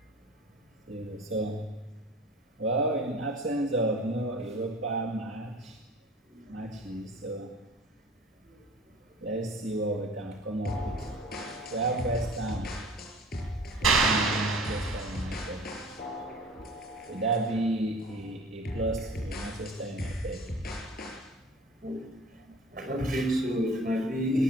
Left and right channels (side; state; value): both; normal; correlation 0.44